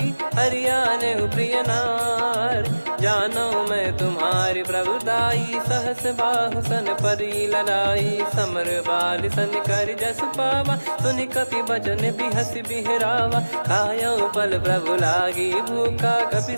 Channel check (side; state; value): both; inverted; correlation -1.00